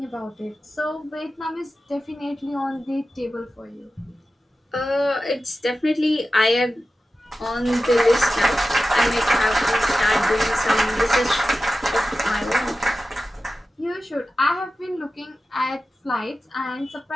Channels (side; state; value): both; normal; correlation 0.94